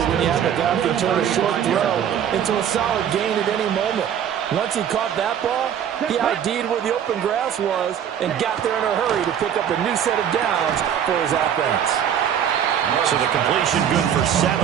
when you have a guy who can turn a short throw into a solid gain at any moment. Once he caught that ball, he ID'd where the open grass was and got there in a hurry to pick up a new set of downs for his offense. So the completion good for 7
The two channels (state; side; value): quieter; left; 9.1 dB